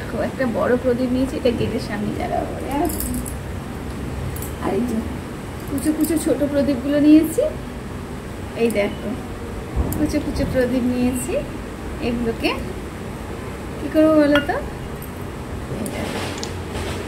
একটা বড় প্রদীপ নিয়েছি, এটা গেটের সামনে জ্বালাবো। আর এই যে কুচো কুচো ছোট প্রদীপগুলো নিয়েছি। এই দেখো কুচো কুচো প্রদীপ নিয়েছি, এগুলোকে কি করবো বলো তো?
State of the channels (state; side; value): identical; both; correlation 1.00